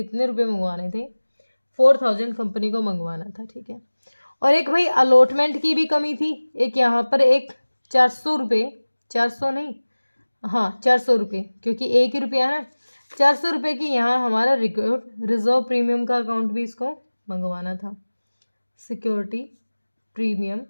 रुपए मंगवाने थे, 4,000 कंपनी को मंगवाना था। ठीक है, और एक भाई अलॉटमेंट की भी कमी थी, एक यहाँ पर एक 400 रुपये, 400 नहीं, हाँ 400 रुपये, क्योंकि एक ही रुपया है ना, 400 रुपये की यहाँ हमारा रिजर्व प्रीमियम का अकाउंट भी इसको मंगवाना था, सिक्योरिटी प्रीमियम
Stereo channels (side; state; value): both; inverted; correlation -1.00